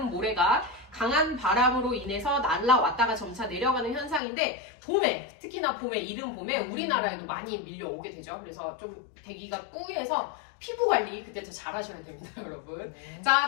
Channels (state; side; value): drops out; right; at 4.2 s